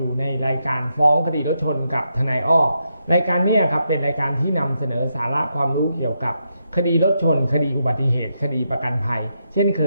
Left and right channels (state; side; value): inverted; both; correlation -0.82